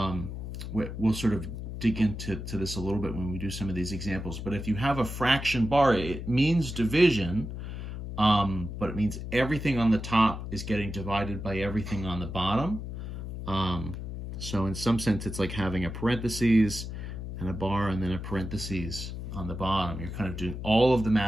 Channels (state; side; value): noise; left; hum, 7 dB below the sound